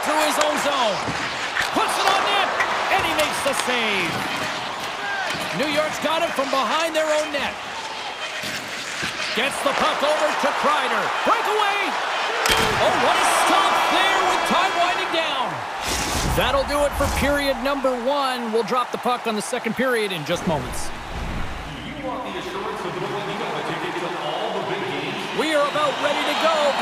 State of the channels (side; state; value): both; identical; correlation 1.00